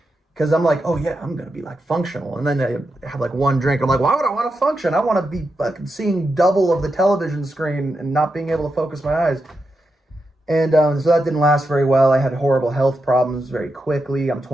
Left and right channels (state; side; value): normal; both; correlation 0.87